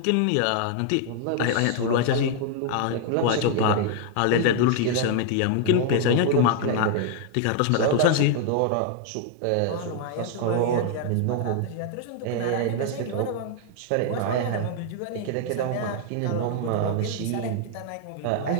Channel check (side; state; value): both; different; correlation 0.00